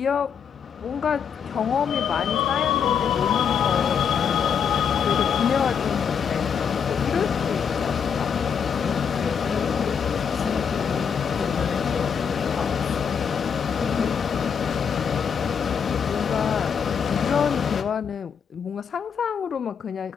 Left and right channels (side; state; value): right; quieter; 7.1 dB